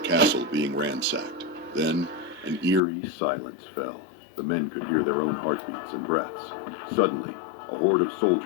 castle being ransacked. Then, an eerie silence fell. The men could hear their own heartbeats and breaths. Suddenly, a horde of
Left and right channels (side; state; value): right; drops out; at 2.8 s